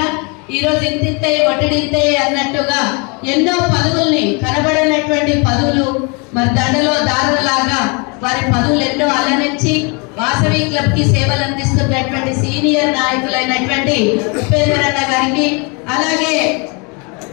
ఈరోజు ఇంతింతే వడ్డింతే అన్నట్టుగా ఎన్నో పదవుల్ని, కనబడినటువంటి పదవులు మరి దండలో దారులాగా వారి పదవులు ఎన్నో అలరించి వాసవి క్లబ్ కి సేవలు అందిస్తున్నటువంటి సీనియర్ నాయకులైనటువంటి ఉపేందర్ అన్న గారికి, అలాగే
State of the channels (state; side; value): quieter; right; 32.0 dB